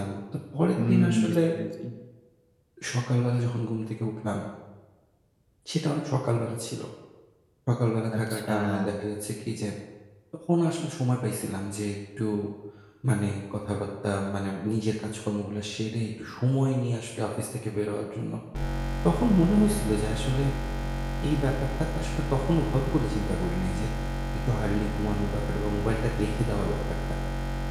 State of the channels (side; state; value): both; identical; correlation 1.00